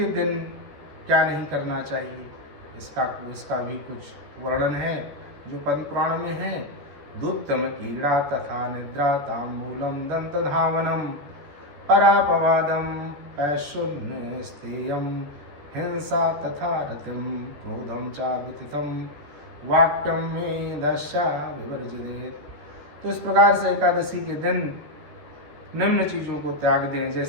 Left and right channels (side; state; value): left; late; 14 ms